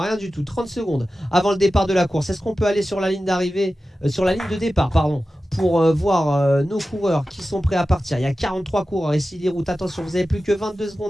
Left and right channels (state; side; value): normal; both; correlation 0.94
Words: du tout. 30 secondes avant le départ de la course. Est-ce qu'on peut aller sur la ligne d'arrivée, sur la ligne de départ, pardon, pour voir nos coureurs qui sont prêts à partir. Il y a 43 coureurs ici les routes. Attention, vous avez plus que 22